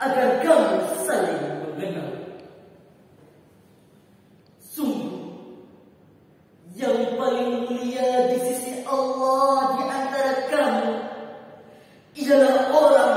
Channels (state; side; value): identical; both; correlation 1.00